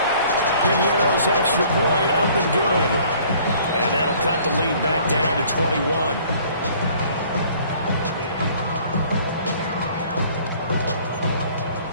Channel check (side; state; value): both; inverted; correlation -0.55